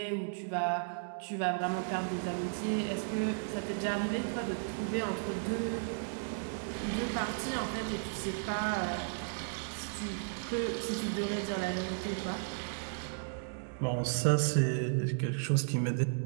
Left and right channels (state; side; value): silent; left; digital silence